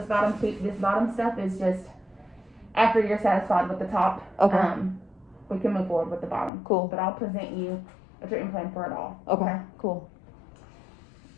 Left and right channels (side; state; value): right; drops out; at 6.5 s